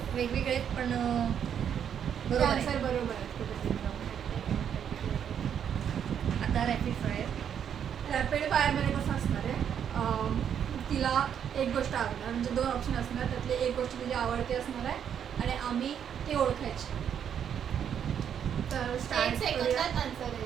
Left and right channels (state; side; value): quieter; left; 8.6 dB